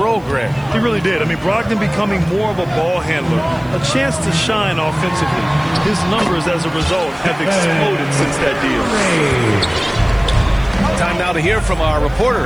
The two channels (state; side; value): noise; right; hiss, 30 dB below the sound